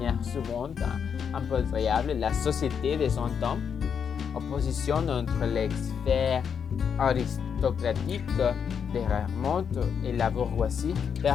souvent un peu variable la société de son temps, opposition entre les sphères aristocratiques des remontes et la bourgeoisie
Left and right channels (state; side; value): quieter; right; 7.2 dB